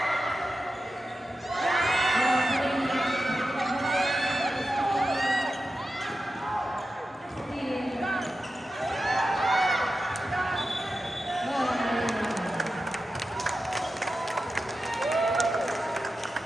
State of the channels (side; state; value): both; normal; correlation 0.91